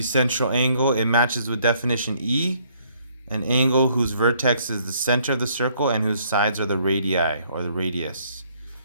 central angle. It matches with definition E, an angle whose vertex is the center of the circle and whose sides are the radii, or the radius.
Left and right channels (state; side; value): inverted; both; correlation -0.65